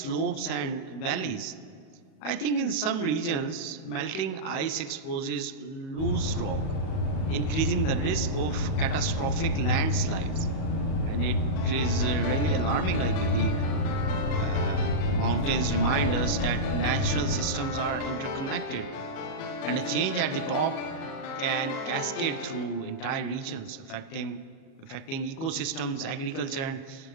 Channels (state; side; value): late; right; 37 ms